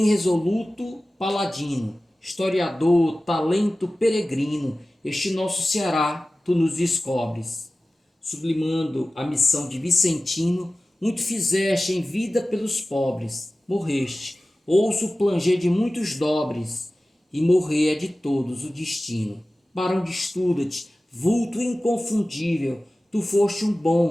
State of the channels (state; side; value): normal; both; correlation 0.96